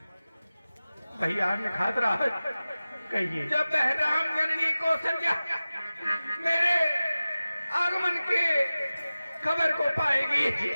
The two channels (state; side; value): inverted; both; correlation -0.96